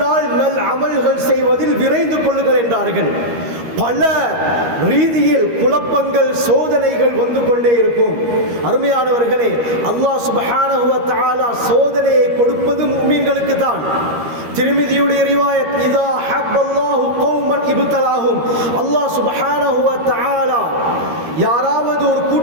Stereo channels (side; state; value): left; late; 13 ms